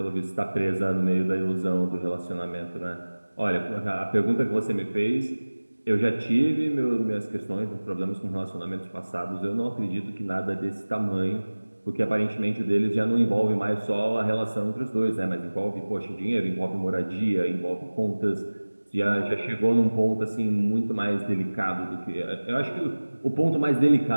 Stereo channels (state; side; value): inverted; both; correlation -1.00